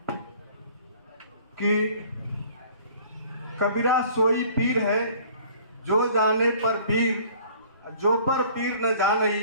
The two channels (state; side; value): inverted; both; correlation -0.53